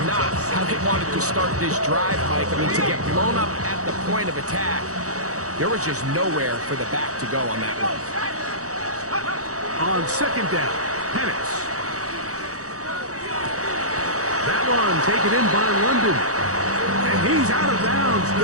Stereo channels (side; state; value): left; late; 0.66 ms